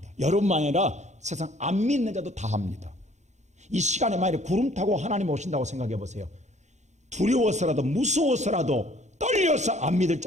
여러분만 아니라 세상 안 믿는 자도 다 합니다. 이 시간에 만약에 구름 타고 하나님 오신다고 생각해 보세요. 두려워서라도 무서워서라도 떨려서 안 믿을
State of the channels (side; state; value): left; late; 0.34 ms